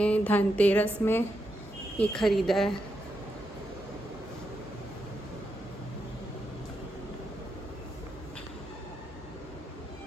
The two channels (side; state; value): both; normal; correlation 0.84